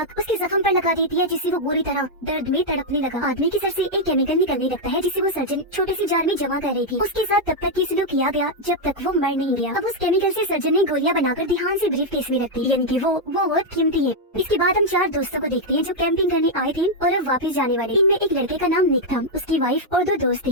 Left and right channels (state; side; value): normal; both; correlation -0.01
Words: उसके जख्म पर लगा देती है, जिससे वो बुरी तरह दर्द में तड़पने लगा। आदमी की सर से एक केमिकल निकलने लगता है, जिसे वो सर्जन छोटे से जार में जमा कर रही थी। उसके साथ तब तक ये सलूक किया गया जब तक वो मर नहीं गया। अब उस केमिकल से सर्जन ने गोलियां बनाकर ध्यान से ब्रीफ केस में रखती, यानी कि वो बहुत कीमती है। इसके बाद हम 4 दोस्तों को देखते हैं जो कैंपिंग करने आए थे और अब वापस जाने वाले। इनमें एक लड़के का नाम निक था, उसकी वाइफ और 2 दोस्त